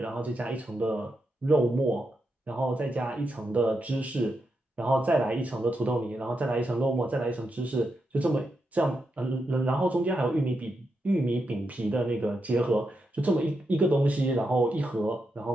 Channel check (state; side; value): normal; both; correlation 0.85